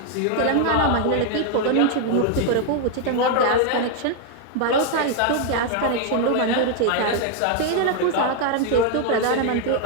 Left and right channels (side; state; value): both; different; correlation 0.00